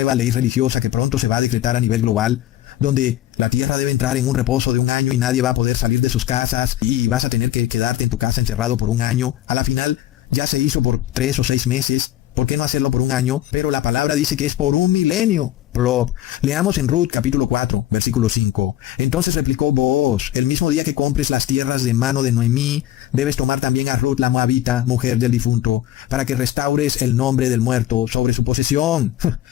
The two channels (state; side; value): quieter; right; 13.4 dB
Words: ley religiosa que pronto se va a decretar a nivel global, donde la tierra debe entrar en un reposo de 1 año y nadie va a poder salir de sus casas y vas a tener que quedarte en tu casa encerrado por 1 año. A la final ya se hizo por 3 o 6 meses. ¿Por qué no hacerlo por 1 año? Pero la palabra dice que es por 1 milenio. Leamos en Ruth capítulo 4, versículo 5. Entonces replicó Booz, el mismo día que compres las tierras de mano de Noemí, debes tomar también a Ruth la moabita, mujer del difunto, para que restaures el nombre del muerto sobre su posesión.